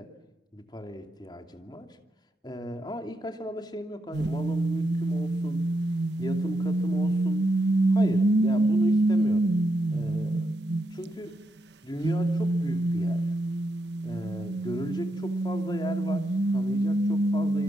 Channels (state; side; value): normal; both; correlation 0.83